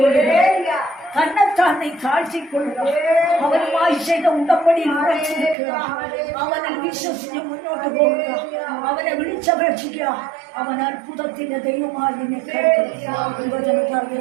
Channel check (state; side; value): drops out; left; at 5.6 s